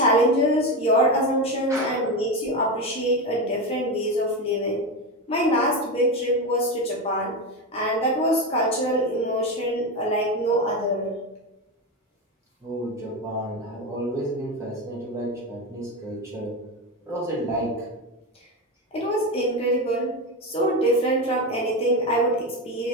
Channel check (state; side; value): normal; both; correlation 0.16